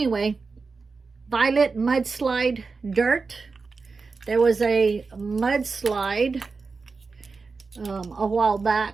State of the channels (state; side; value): quieter; left; 4.4 dB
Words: violet mudslide dirt. There was a mudslide a while